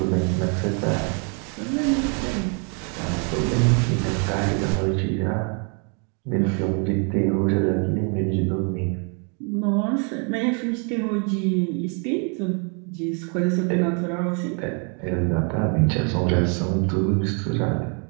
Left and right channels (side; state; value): left; quieter; 37.6 dB